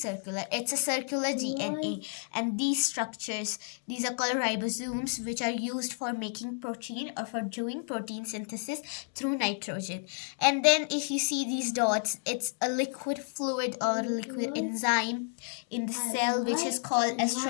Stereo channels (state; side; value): silent; right; 57 dB below the other